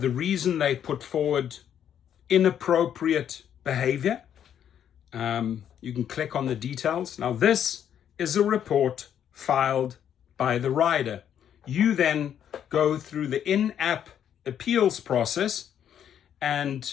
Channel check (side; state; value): right; quieter; 9.4 dB